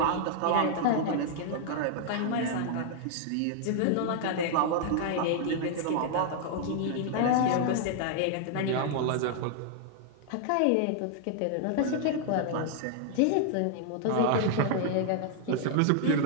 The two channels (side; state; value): both; different; correlation 0.00